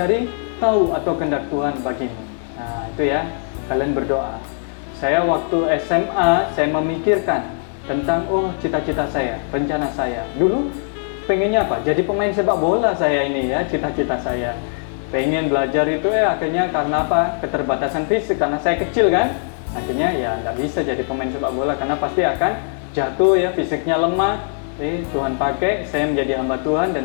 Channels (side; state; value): right; silent; digital silence